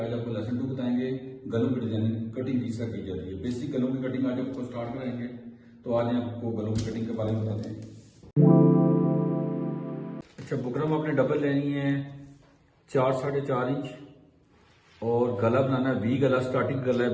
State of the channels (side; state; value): both; identical; correlation 1.00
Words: आपको लेसन 2 बताएंगे गलों की डिजाइनिंग कटिंग किस तरह की जाती है। बेसिक गलों की कटिंग आज आपको स्टार्ट कराएंगे। तो आज आपको गलों की कटिंग के बारे में बताते हैं। अच्छा, बुकरम आपने डबल लेनी है 4 साढ़े 4 इंच और गला बनाना है वी गला। स्टार्टिंग गला